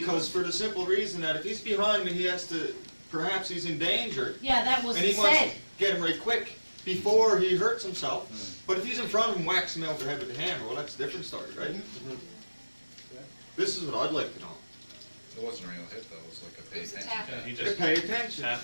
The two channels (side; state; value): both; inverted; correlation -1.00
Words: for the simple reason that if he's behind me, he has to, perhaps he's in danger, Yeah, that was and he said. wants to get him right quick before he hurts himself. But if he's in front of him, whacks him over the head with the hammer, well, that's a different story, right? Mhm. This is what I'd like to know. It wasn't a real hit though, it was like a It pay was a attention. tap. Yeah, he To just, pay attention.